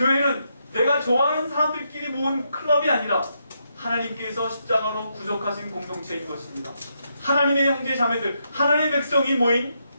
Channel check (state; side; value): inverted; both; correlation -0.80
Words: 내가 좋아하는 사람들끼리 모은 클럽이 아니라 하나님께서 십자가로 구속하신 공동체인 것입니다. 하나님의 형제 자매들, 하나님의 백성이 모인